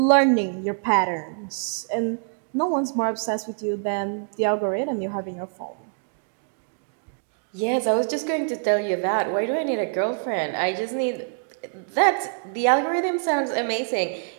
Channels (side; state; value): left; silent; digital silence